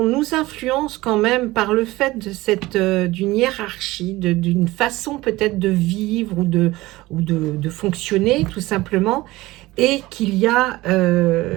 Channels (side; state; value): left; quieter; 19.0 dB